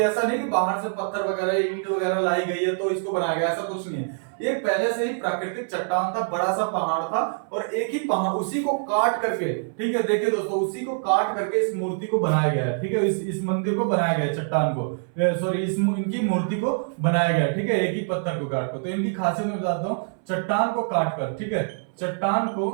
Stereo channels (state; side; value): silent; left; 62 dB below the other